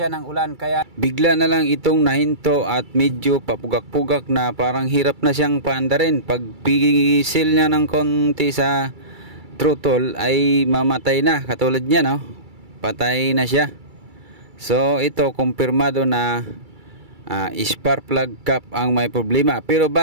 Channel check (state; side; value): late; left; 2.3 ms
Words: ng ulan, kaya bigla na lang itong nahinto at medyo papugak-pugak na, parang hirap na siyang paandarin. Pag pisil niya ng konti sa throttle ay mamatay na, katulad niya, no? Patay na siya. So ito kumpirmado na spark plug cap ang may problema. Pero